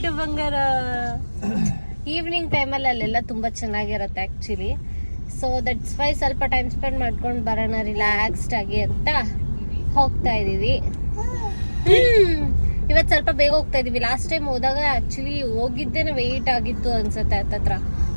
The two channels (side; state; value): both; inverted; correlation -1.00